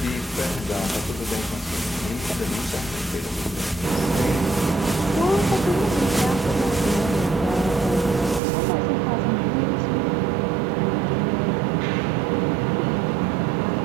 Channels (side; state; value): left; drops out; at 8.4 s